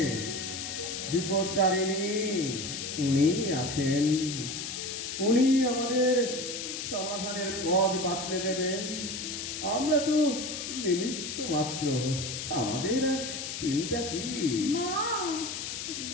বিপদতারিণী উনি আছেন। উনি আমাদের সমাধানের পথ বাতলে দেবেন। আমরা তো নিমিত্ত মাত্র, আমাদের আর চিন্তা কি? মা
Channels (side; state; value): left; noise; hiss, 5 dB below the sound